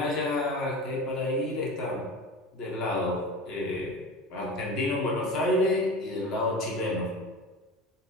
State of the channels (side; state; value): both; normal; correlation 0.31